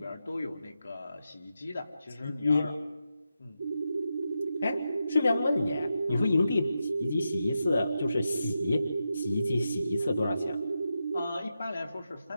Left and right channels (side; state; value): both; inverted; correlation -0.88